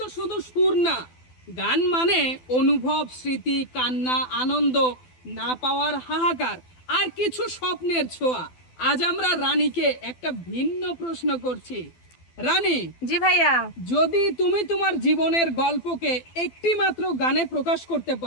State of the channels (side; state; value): right; late; 12 ms